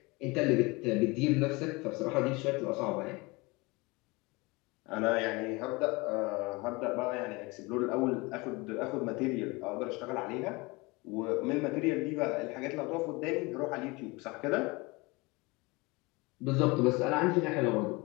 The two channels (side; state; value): right; quieter; 24.9 dB